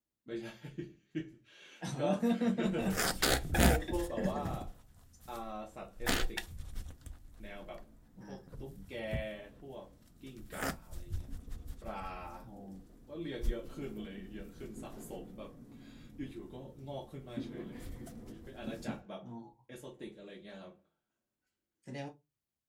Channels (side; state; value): both; identical; correlation 1.00